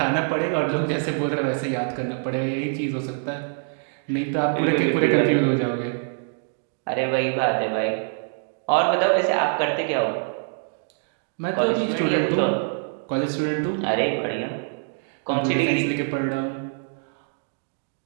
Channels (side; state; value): left; silent; 62 dB below the other